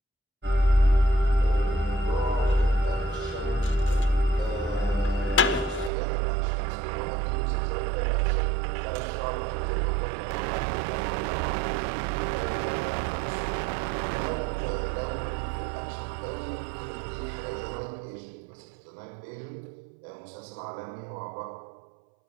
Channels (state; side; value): drops out; left; at 5.9 s